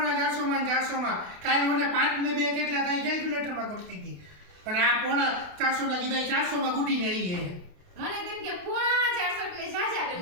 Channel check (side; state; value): left; late; 28 ms